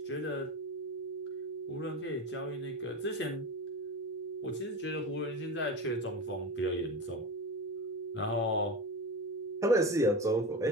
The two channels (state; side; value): normal; both; correlation 0.25